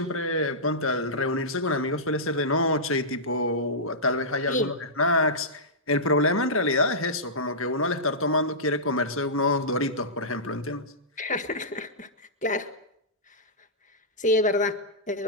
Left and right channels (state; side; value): normal; both; correlation -0.15